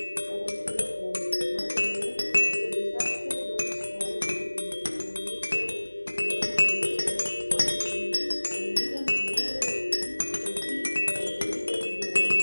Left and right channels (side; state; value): both; inverted; correlation -1.00